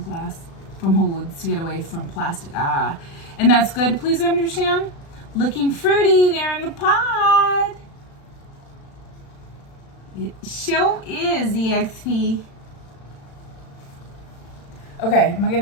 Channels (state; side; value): late; right; 36 ms